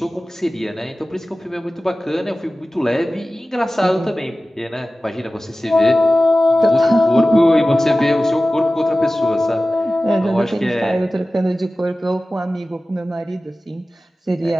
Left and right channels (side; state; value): both; normal; correlation 0.96